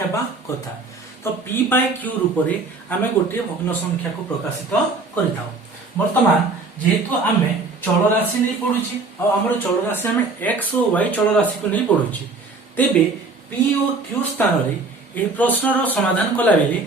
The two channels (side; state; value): left; quieter; 3.7 dB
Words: कथा। तो p बाय q रूप में आम गोटे भग्न संख्या को प्रकाशित करिता। वर्तमान जेहेतु आम चल राशि नहीं पढ़ुची और आमर चल राशि आम x और y चल राशि को नहीं पढ़ुची, तेबे p और q स्थान रे ए प्रश्न रो समाधान कला बेले